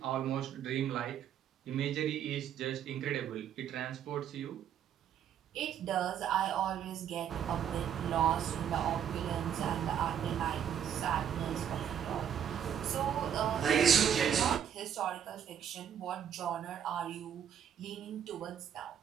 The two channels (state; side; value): quieter; left; 9.1 dB